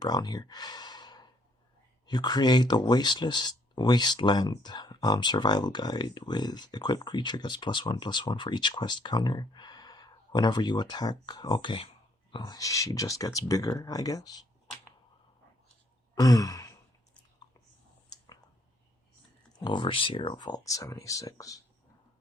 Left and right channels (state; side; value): normal; both; correlation 0.67